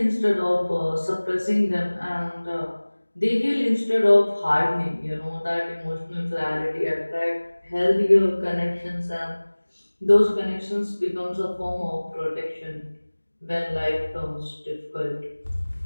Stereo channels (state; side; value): inverted; both; correlation -1.00